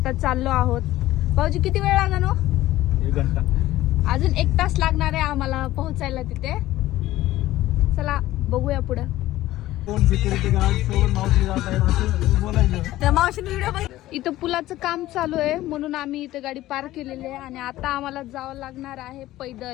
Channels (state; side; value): quieter; right; 15.6 dB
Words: चाललो आहोत. भाऊजी किती वेळ लागणार हो? 1 घंटा. अजून 1 तास लागणार आहे आम्हाला पोहोचायला तिथे. चला बघूया पुढं. कोण सिक्युरिटी गार्ड सोबत मावशी जात आहे असं बोलायचं. त्या मावशीने व्हिडिओ बघ. इथं पुलाचं काम चालू आहे म्हणून आम्ही इथे गाडी पार्क केलेली आहे आणि आता आम्हाला जावं लागणार आहे